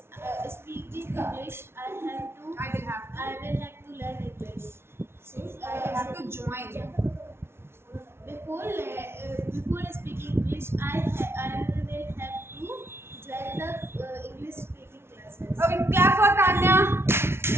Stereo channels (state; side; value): late; left; 0.12 ms